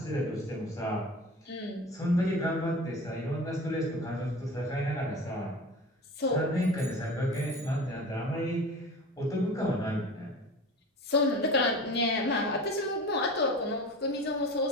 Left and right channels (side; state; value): both; normal; correlation 0.35